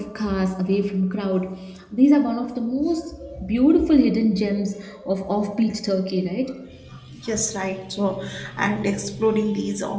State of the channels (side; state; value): both; identical; correlation 1.00